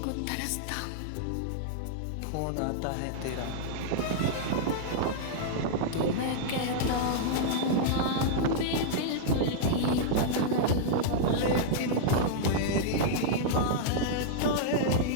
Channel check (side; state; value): both; different; correlation -0.02